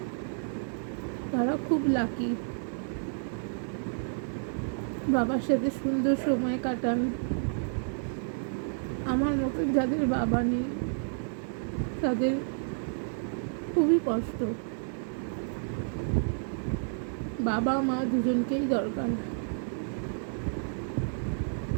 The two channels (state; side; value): silent; left; 57 dB below the other